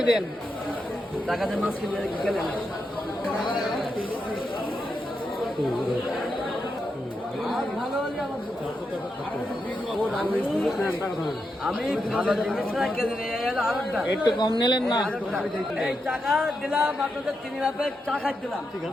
দেন টাকাতে মাছ কিনে গেলেন আমি ভালো জিনিস একটু কম নিলেন না এই টাকা দিলাম আপনাদের 3 লাখের চা খাই দিলাম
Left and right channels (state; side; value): normal; both; correlation 0.85